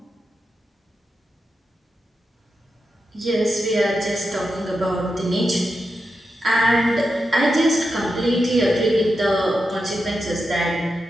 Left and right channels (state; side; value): normal; both; correlation 0.88